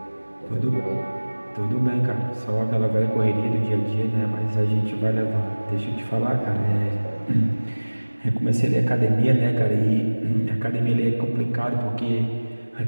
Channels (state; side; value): inverted; both; correlation -1.00